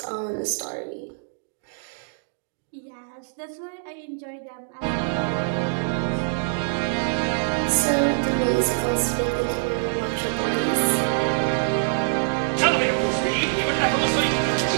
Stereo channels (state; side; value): silent; left; digital silence